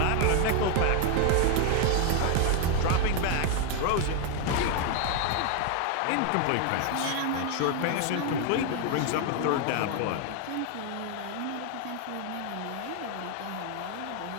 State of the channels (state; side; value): different; both; correlation 0.00